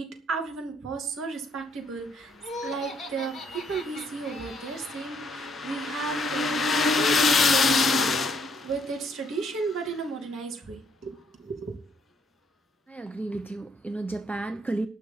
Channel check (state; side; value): normal; both; correlation 0.69